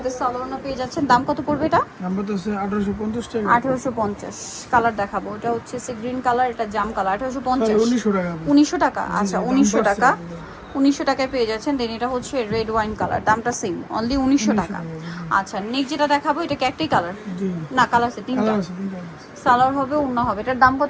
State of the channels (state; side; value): identical; both; correlation 1.00